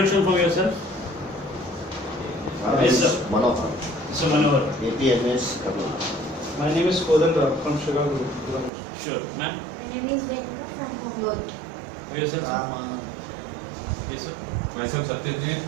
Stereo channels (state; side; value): drops out; left; at 8.7 s